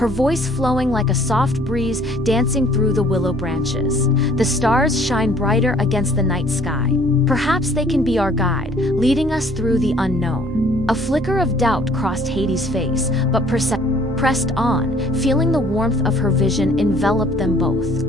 voice flowing like a soft breeze dancing through the willow branches. The stars shine brighter against the night sky. Perhaps they can be our guide, leading us through the unknown. A flicker of doubt crossed Hades' face, but Persephone pressed on, feeling the warmth of her vision envelop them both.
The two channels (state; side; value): normal; both; correlation 0.58